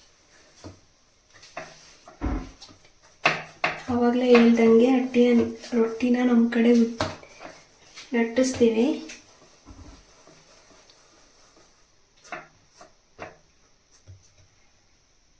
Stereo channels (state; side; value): identical; both; correlation 1.00